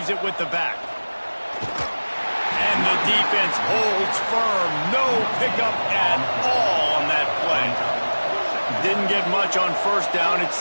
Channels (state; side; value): inverted; both; correlation -1.00